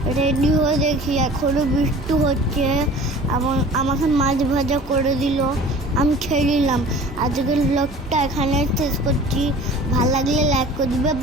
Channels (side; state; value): both; normal; correlation 0.43